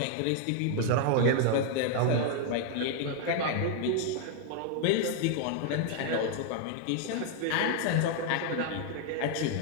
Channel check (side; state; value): both; different; correlation 0.00